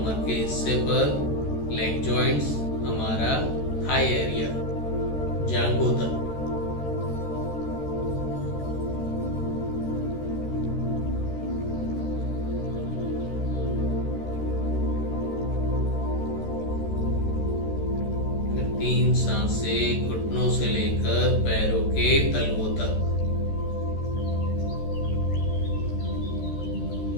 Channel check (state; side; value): late; right; 13 ms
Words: के हिस्से पर, लेग जॉइंट्स, हमारा थाई एरिया, जांघों तक, फिर 3 सांसें घुटनों से लेकर पैरों के तलवों तक,